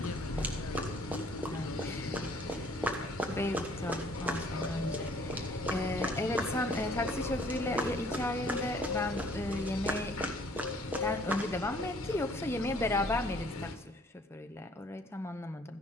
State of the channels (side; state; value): both; normal; correlation 0.59